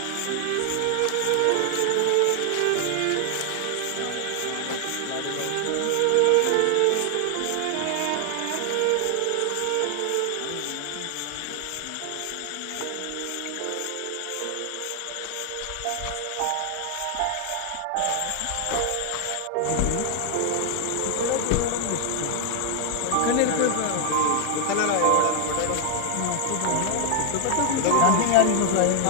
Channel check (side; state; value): both; different; correlation 0.00